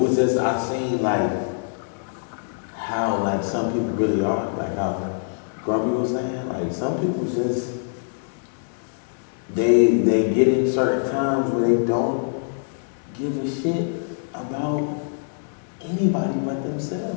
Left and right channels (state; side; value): silent; right; digital silence